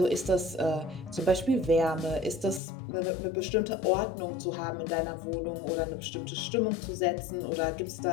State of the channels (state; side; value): drops out; right; at 2.6 s